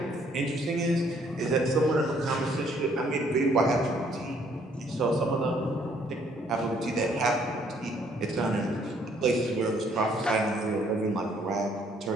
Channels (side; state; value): both; normal; correlation 0.65